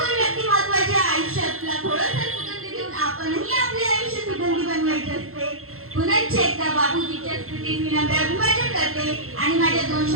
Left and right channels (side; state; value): left; late; 0.62 ms